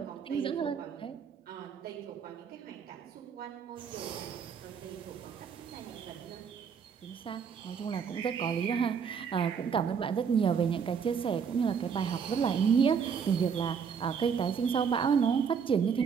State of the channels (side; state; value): left; quieter; 6.7 dB